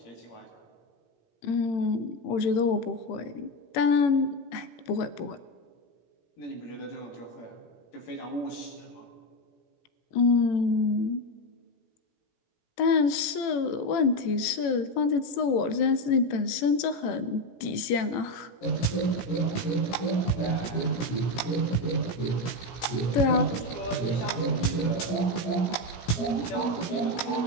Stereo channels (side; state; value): right; late; 17 ms